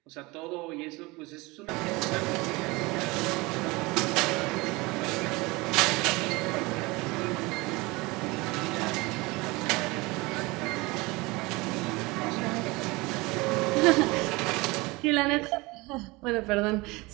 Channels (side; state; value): left; quieter; 23.5 dB